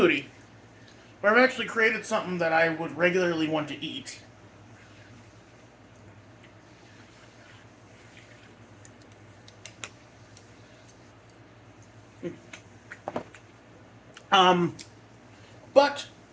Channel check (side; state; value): both; identical; correlation 1.00